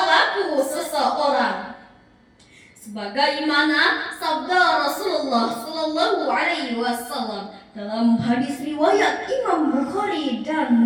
laku seseorang. Sebagaimana sabda Rasulullah Sallallahu Alaihi Wasallam dalam hadis riwayat Imam Bukhari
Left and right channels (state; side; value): identical; both; correlation 1.00